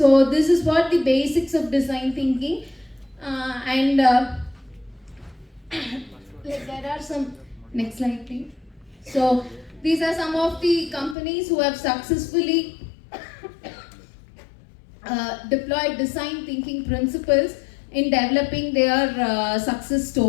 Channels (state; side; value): drops out; right; at 11.2 s